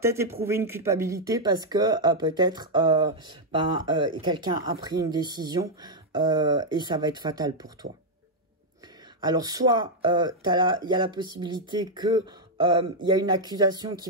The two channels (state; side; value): normal; both; correlation -0.02